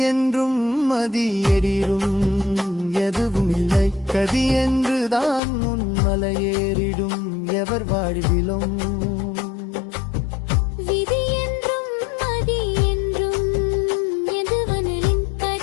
என்றும் மதி எறிடும் எதுவும் இல்லை, கதி என்றுதான் உன் மலையேறிடும் எவர் வாழ்விலும். விதி என்றும் மதி என்றும் எதுவனிலும்,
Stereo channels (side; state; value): right; drops out; at 5.4 s